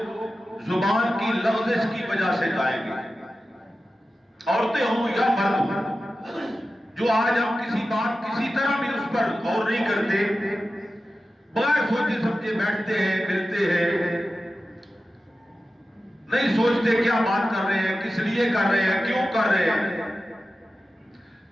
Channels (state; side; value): normal; both; correlation 0.94